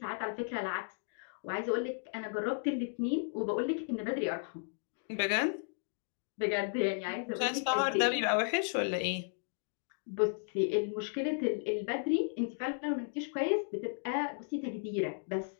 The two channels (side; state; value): right; silent; digital silence